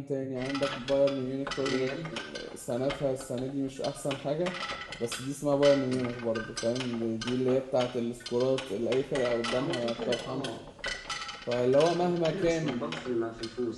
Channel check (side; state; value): both; identical; correlation 1.00